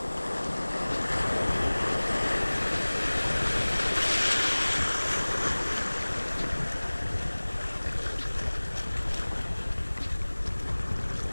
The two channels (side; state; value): both; inverted; correlation -1.00